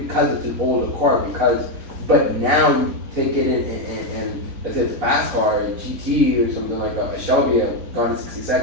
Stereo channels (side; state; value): left; late; 4.0 ms